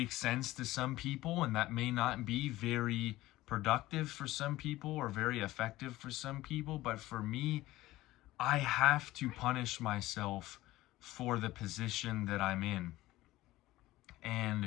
sense to some people, and that may not be very productive for some people or very effective for some people, but for me, I have to punish myself for the position that I'm in.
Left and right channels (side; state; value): right; quieter; 17.0 dB